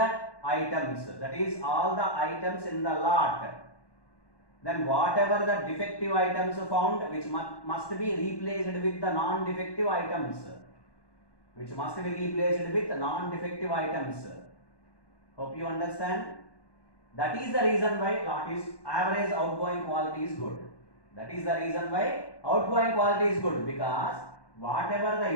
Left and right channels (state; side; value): late; right; 1.1 ms